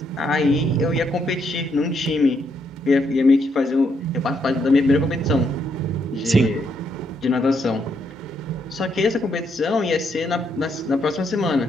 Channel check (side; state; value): both; normal; correlation 0.76